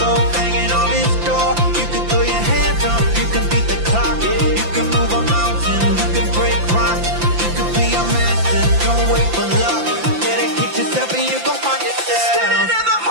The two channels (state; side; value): late; left; 5.8 ms